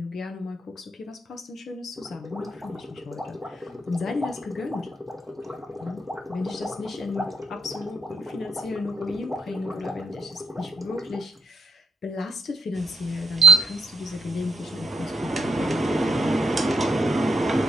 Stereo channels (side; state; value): both; normal; correlation 0.74